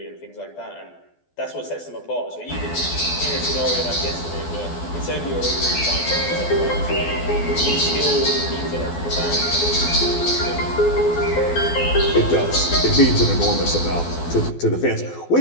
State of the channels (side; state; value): right; late; 12 ms